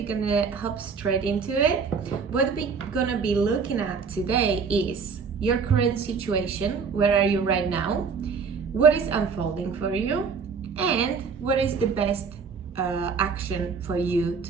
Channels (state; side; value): quieter; left; 5.6 dB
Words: gonna hop straight into it. What we're gonna be looking at today is your current situation. Where are you right now? What is unfolding for you? And what is the best action for you